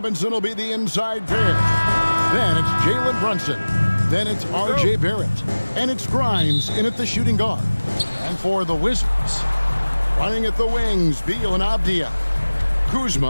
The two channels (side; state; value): both; inverted; correlation -1.00